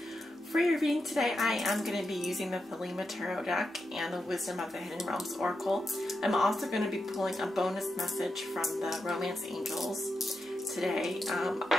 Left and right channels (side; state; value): both; normal; correlation 0.87